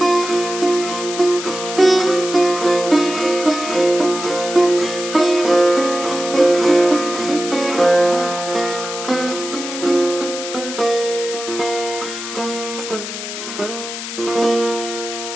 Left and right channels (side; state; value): left; noise; hiss, 8 dB below the sound